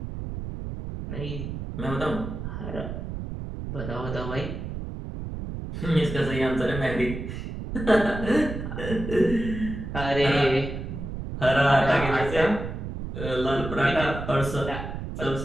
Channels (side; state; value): right; noise; rumble, 6 dB below the sound